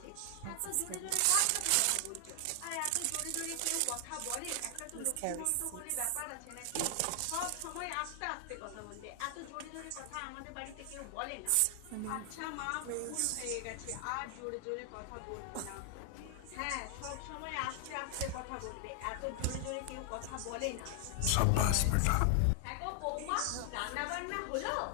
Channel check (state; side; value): different; both; correlation 0.00